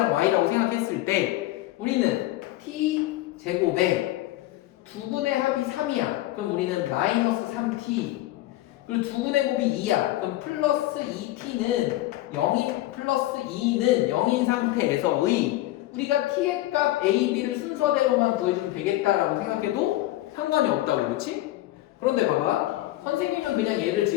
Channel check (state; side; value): quieter; right; 16.3 dB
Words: y라고 생각했을 때 우리는 t 제곱에 두 근의 합이 3이야. 그럼 우리는 마이너스 3t 그리고 두 근의 곱이 2야. 그럼 플러스 2t는 0인 플러스 2는 0인 상태에서의 우리가 t의 값 a, b를 순서대로만 구해주면 되겠다라고 생각해도 상관이 없다고. 그렇지? 그런데 봐봐. 선생님은 그냥 얘를